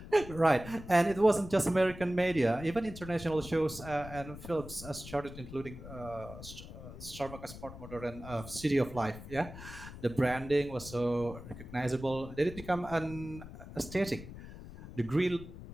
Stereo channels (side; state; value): left; noise; rumble, 13 dB below the sound